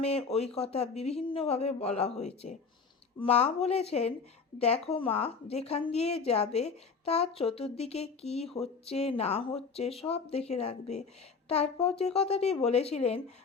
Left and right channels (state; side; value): quieter; right; 5.2 dB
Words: ওই কথা বিভিন্নভাবে বলা হয়েছে। মা বলেছেন, দেখো মা, যেখান দিয়ে যাবে তার চতুর্দিকে কি হচ্ছে না হচ্ছে সব দেখে রাখবে। তারপর যে কথাটি বলেছিলেন